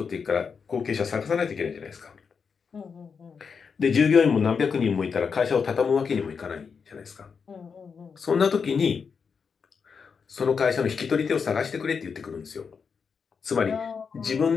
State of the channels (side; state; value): right; quieter; 5.9 dB